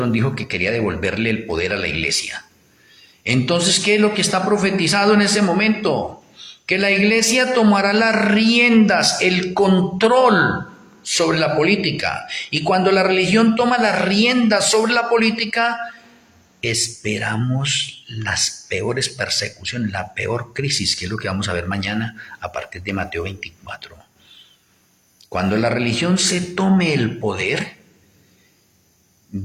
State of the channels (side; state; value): both; identical; correlation 1.00